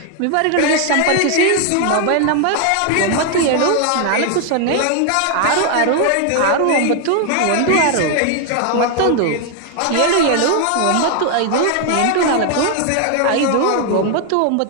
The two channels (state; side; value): different; both; correlation 0.01